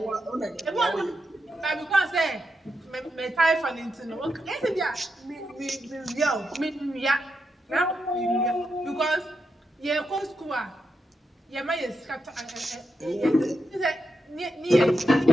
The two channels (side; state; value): both; normal; correlation 0.85